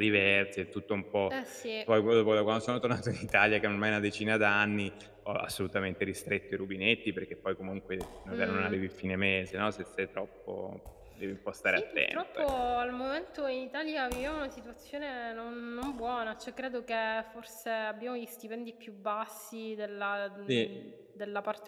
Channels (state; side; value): identical; both; correlation 1.00